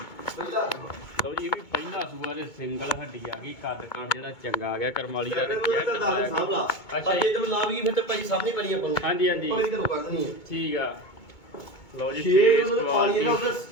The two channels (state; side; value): late; right; 2.2 ms